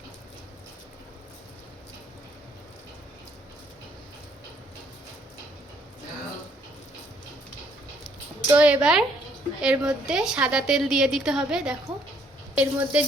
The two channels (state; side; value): normal; both; correlation 0.66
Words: তো এবার এর মধ্যে সাদা তেল দিয়ে দিতে হবে। দেখো এর মধ্যে